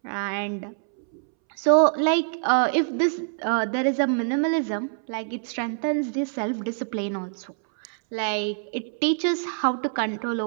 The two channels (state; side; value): silent; left; 62 dB below the other